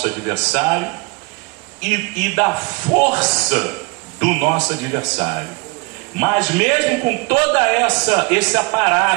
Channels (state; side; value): quieter; left; 28.0 dB